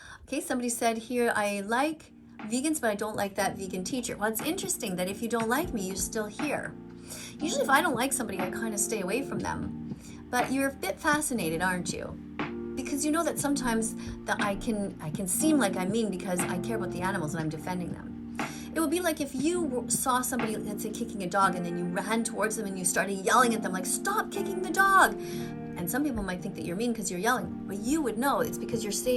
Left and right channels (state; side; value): identical; both; correlation 1.00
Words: Okay, somebody said here, I like vegans, but I don't like that vegan teacher. Well, it's interesting that if you don't like me, you're still here. Usually if I don't like somebody, I kind of stay away from them. But you're a bit fascinated, aren't you? Because you know that sometimes that I can seem like I'm mean because I care about the animals and I'm defending them. It would be like if you saw somebody, let's say, kicking a dog, and then you ran towards them and you started yelling at them like, stop kicking the dog. And some people might think that you're mean because you're yelling, but you would know it's because you're